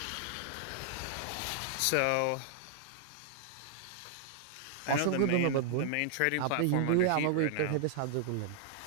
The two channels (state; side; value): different; both; correlation -0.01